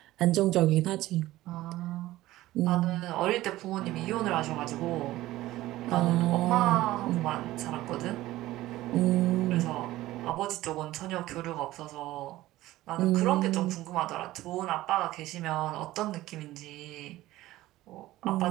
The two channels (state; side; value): quieter; left; 16.4 dB